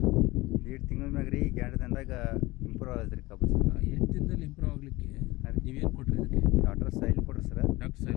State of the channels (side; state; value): right; quieter; 20.4 dB